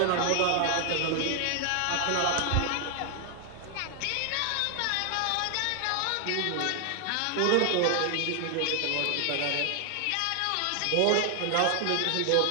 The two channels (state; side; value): different; both; correlation 0.00